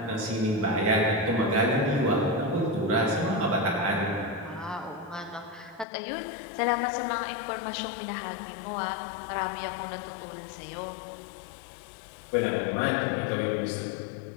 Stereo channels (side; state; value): right; drops out; at 5.9 s